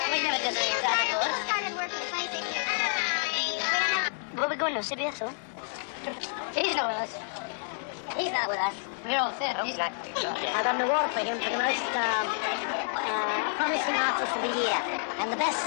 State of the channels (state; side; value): silent; right; digital silence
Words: We never did that before. He started working 26 years ago. Where we going now, CBS, huh? He's not with us. He's not with us. We're all set. He's not. I got an award for him for the most promising artist of the year and the